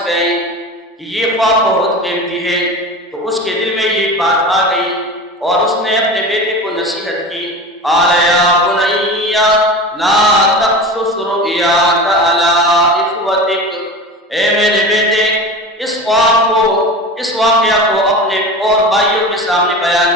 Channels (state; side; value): normal; both; correlation 0.31